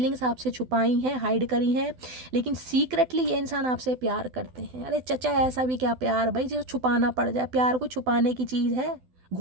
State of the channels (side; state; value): left; late; 12 ms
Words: आपसे छुपाई हैं, हाइड करी हैं, लेकिन सीक्रेटली ये इंसान आपसे प्यार करते हैं। अरे चचा ऐसा भी क्या प्यार भाई जो छुपाना पड़ जाए। प्यार को छुपाने की चीज़ है,